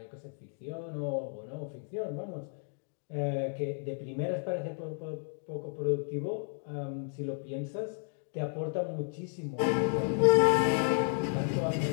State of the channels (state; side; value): silent; right; 56 dB below the other